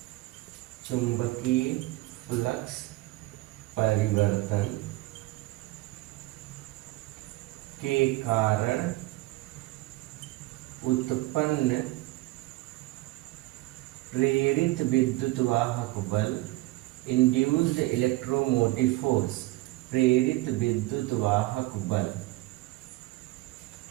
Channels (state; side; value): quieter; left; 19.3 dB